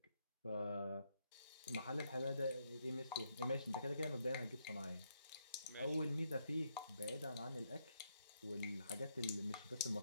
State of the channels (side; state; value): both; inverted; correlation -0.78